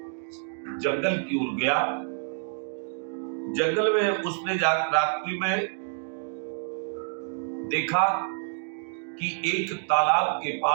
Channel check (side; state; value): left; silent; digital silence